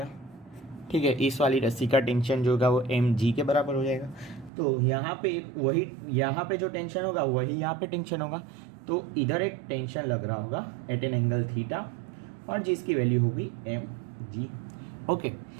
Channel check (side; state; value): left; drops out; at 4.5 s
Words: ठीक है, इस वाली रस्सी का टेंशन जो होगा वो mg के बराबर हो जाएगा। तो यहाँ पे एक वही, यहाँ पे जो टेंशन होगा वही यहाँ पे टेंशन होगा, तो इधर एक टेंशन लग रहा होगा एट एन एंगल थीटा, और जिसकी वैल्यू होगी mg। ओके,